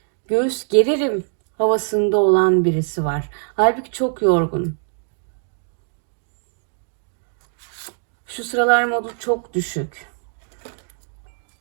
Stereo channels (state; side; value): silent; left; digital silence